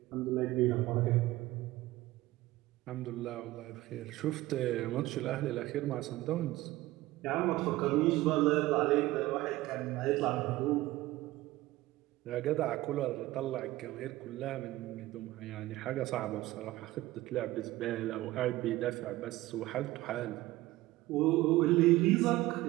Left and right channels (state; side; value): quieter; left; 17.6 dB